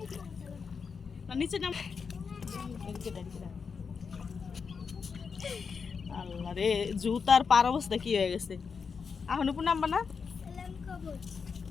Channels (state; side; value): quieter; right; 5.7 dB